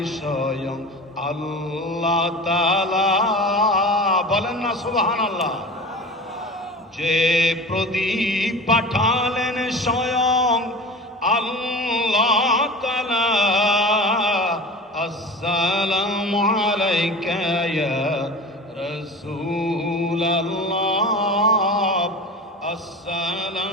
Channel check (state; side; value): normal; both; correlation 0.34